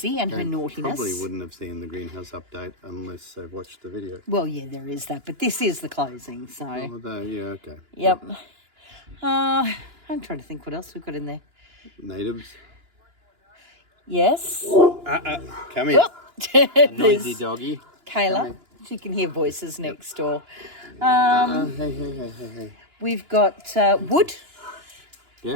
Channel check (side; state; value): left; late; 2.9 ms